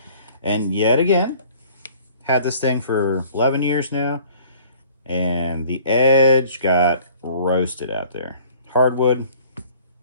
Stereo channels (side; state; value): both; inverted; correlation -0.53